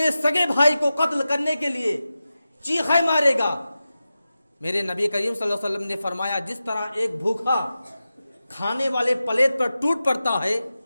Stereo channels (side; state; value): both; inverted; correlation -0.93